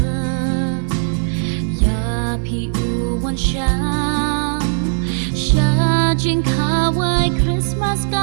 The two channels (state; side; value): silent; left; 67 dB below the other